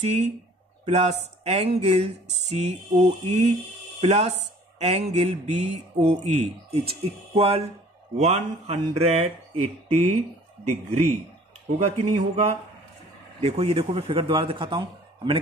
plus angle COE plus angle BOE is equal 180 degree होगा कि नहीं होगा. देखो ये देखो मैं फिगर दोबारा दिखाता हूं. मैंने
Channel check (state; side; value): normal; both; correlation 0.52